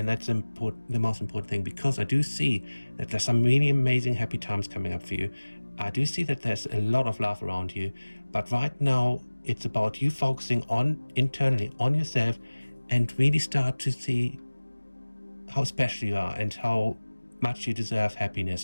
that's the most important thing, because I do see that there's some really amazing happy times coming up for you. I do see that there's a lot of love around you, but right now it's about you focusing internally on yourself, and really start to see how special you are and how much you deserve happiness.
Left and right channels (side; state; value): both; inverted; correlation -1.00